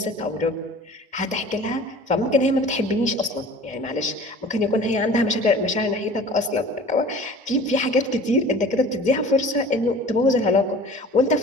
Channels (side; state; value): both; normal; correlation 0.44